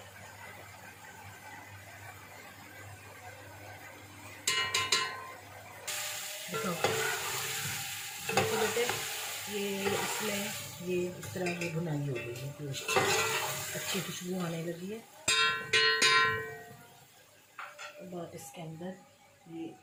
देखो देखो बेटे, ये इसमें ये इस तरह ये भुनाई हो गई है, गोश्त अच्छी खुशबू आने लगी है। अब आप इसके अंदर ये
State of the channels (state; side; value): identical; both; correlation 1.00